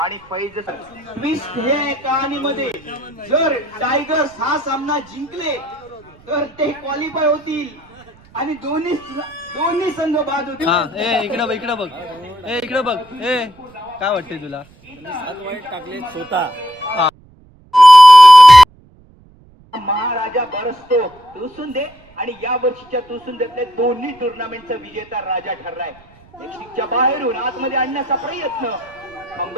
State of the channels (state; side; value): noise; right; rumble, 28 dB below the sound